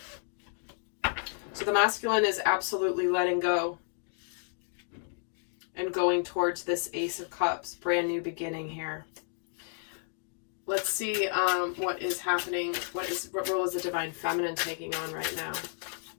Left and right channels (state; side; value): silent; right; 57 dB below the other